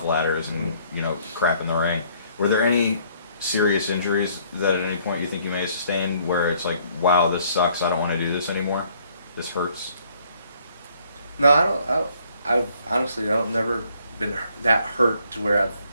ladders and crap in the ring. Were there any serious injuries that at any point you think you may have sustained where it's like, wow, this sucks. I don't want to do this anymore. This hurts. No, I don't. I've honestly, I've never been that hurt to where I've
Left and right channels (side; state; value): both; inverted; correlation -0.64